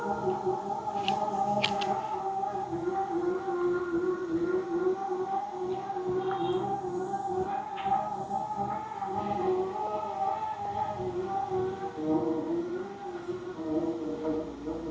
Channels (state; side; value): identical; both; correlation 1.00